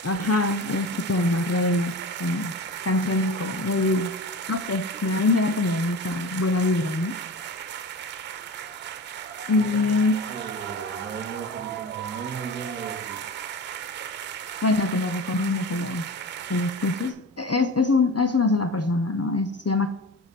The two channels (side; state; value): both; normal; correlation 0.33